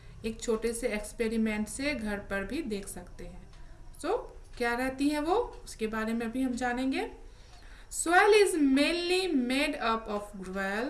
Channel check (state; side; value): identical; both; correlation 1.00